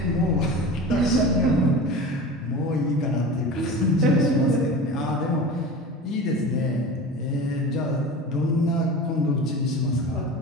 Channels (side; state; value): both; normal; correlation 0.33